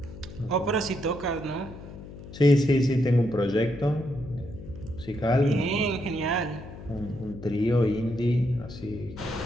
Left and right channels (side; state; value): left; noise; hum, 14 dB below the sound